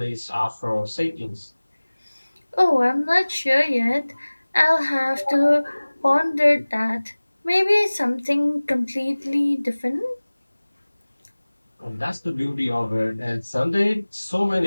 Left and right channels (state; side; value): inverted; both; correlation -1.00